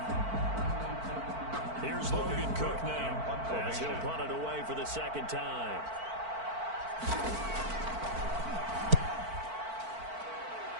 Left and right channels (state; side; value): late; left; 4.5 ms